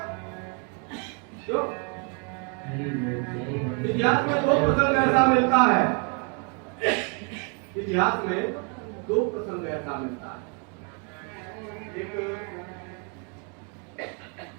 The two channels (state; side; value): quieter; left; 37.2 dB